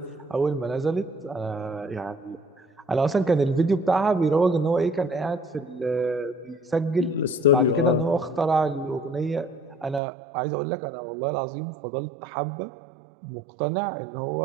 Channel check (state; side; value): drops out; left; at 10.0 s